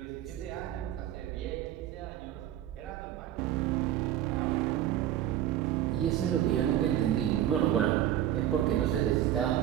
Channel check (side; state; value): left; quieter; 12.1 dB